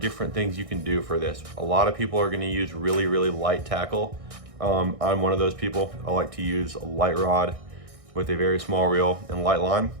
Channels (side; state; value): left; late; 1.6 ms